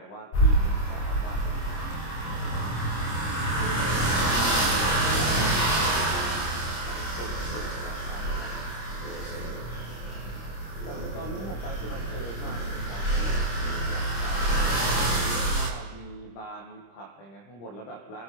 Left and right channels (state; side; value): late; right; 26 ms